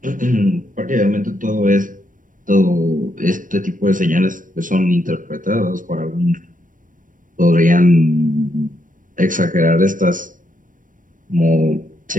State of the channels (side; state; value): left; late; 0.38 ms